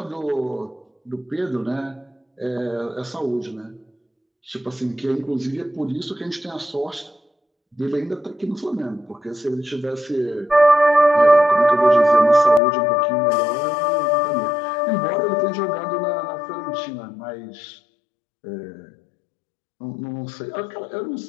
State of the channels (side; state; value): right; drops out; at 12.6 s